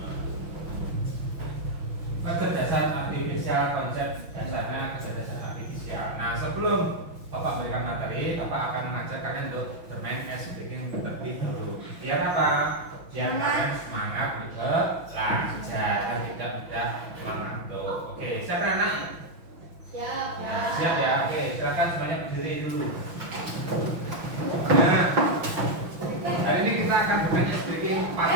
Kecerdasan artifisial, konsep dasarnya kecerdasan artifisial. Nah, sebelum Bapak memberikan materi, Bapak akan mengajak kalian untuk bermain ice breaking terlebih dahulu. Biar apa? Biar kalian semangat belajar dan tidak mudah mengantuk. Oke, siapa anak? Siap. Nah, siap ya. Oke, silakan semuanya berdiri dulu. Nah, hari ini kita akan bermain ice breaking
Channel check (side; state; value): left; late; 6.0 ms